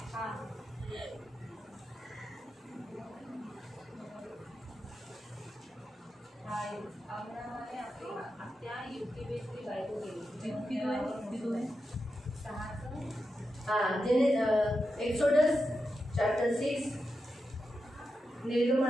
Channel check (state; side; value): normal; both; correlation 0.89